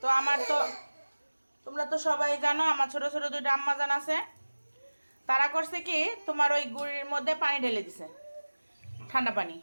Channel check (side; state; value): both; inverted; correlation -1.00